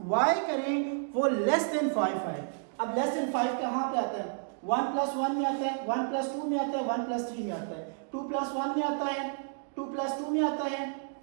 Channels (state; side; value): silent; left; digital silence